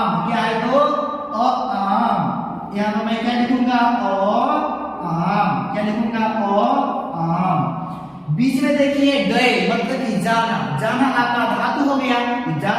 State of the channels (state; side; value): identical; both; correlation 1.00